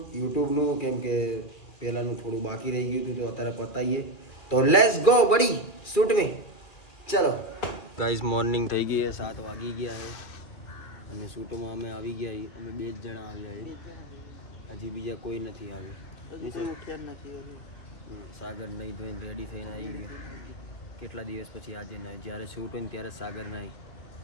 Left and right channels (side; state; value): right; late; 2.3 ms